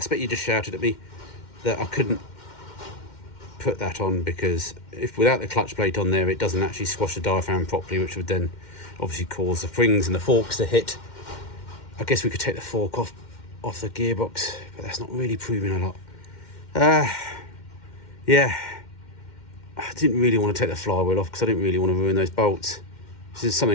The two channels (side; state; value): right; late; 2.1 ms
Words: you just shouted at me that I couldn't put that on, because if without the clutch plate on there, it doesn't actually squash the diaphragm properly, which would then obviously cause the springs and the forks to hit. I guess we could take the fork off the gearbox, but that's not really proving a lot. Yeah, I didn't really want to take the flywheel off because I didn't really want to ruin those bolts. This is